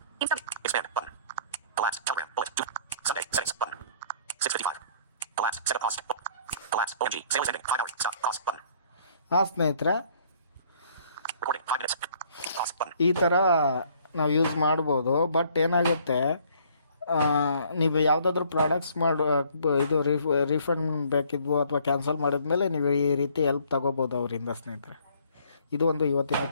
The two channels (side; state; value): both; inverted; correlation -0.59